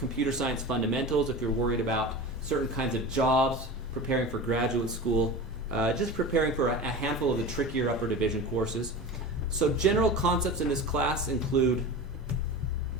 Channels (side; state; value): both; normal; correlation 0.31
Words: science fundamentals, if you're worried about certain kinds of jobs, preparing for graduate school, just preparing for a handful of the trickier upper division courses. So general concepts in this class include